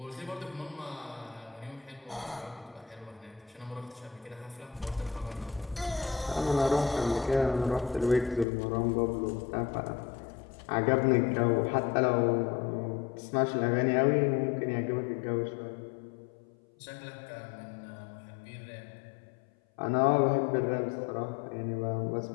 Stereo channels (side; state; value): right; drops out; at 8.5 s